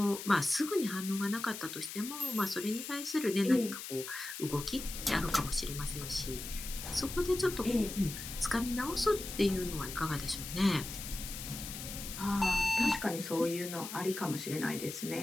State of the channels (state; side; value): noise; left; hiss, 8 dB below the sound